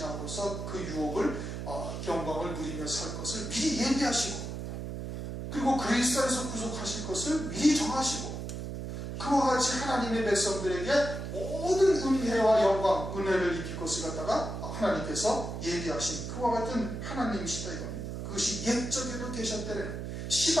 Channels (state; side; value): noise; right; hum, 6 dB below the sound